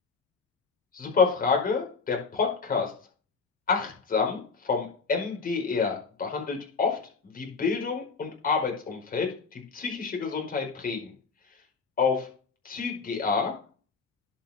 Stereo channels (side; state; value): right; quieter; 4.8 dB